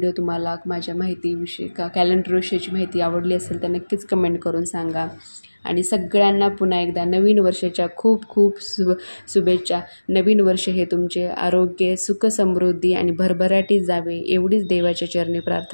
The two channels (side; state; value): both; inverted; correlation -1.00